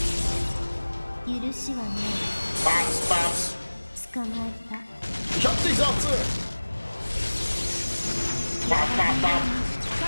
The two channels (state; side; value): inverted; both; correlation -1.00